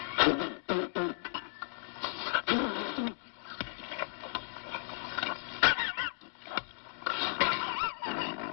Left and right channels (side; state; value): right; silent; digital silence